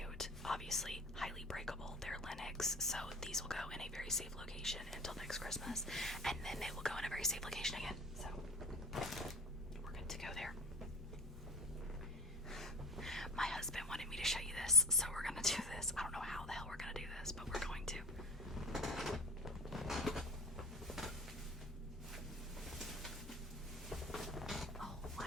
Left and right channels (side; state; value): both; normal; correlation 0.34